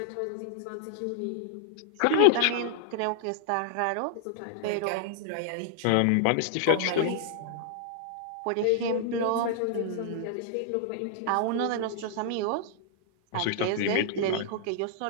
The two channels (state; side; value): different; both; correlation -0.01